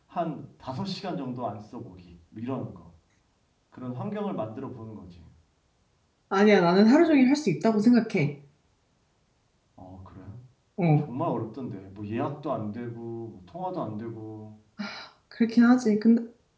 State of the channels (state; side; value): identical; both; correlation 1.00